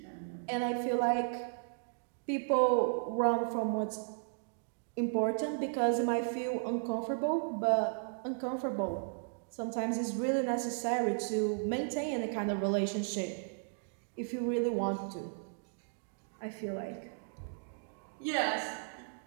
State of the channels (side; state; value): left; silent; digital silence